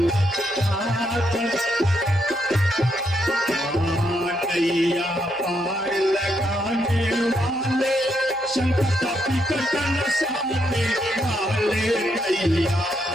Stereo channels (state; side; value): noise; right; hum, 29 dB below the sound